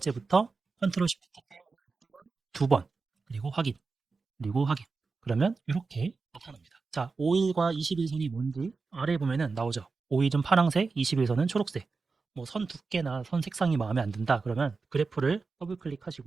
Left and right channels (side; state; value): left; quieter; 4.4 dB